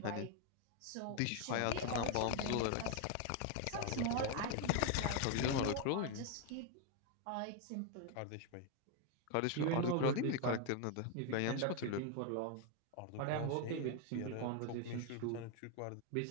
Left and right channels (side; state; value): both; different; correlation 0.01